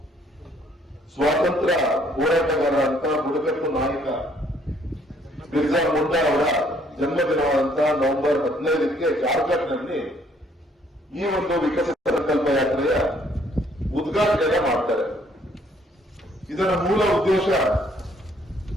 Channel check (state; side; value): normal; both; correlation 0.64